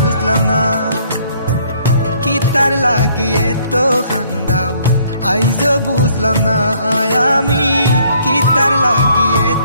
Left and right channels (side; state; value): both; inverted; correlation -0.64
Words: না, কিতার লাগি এত খান্দাও আইজ বুঝলাম না আমি। কিতার লাগি